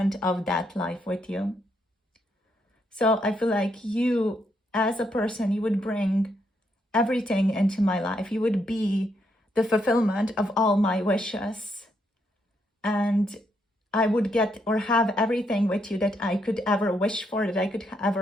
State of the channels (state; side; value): normal; both; correlation 0.77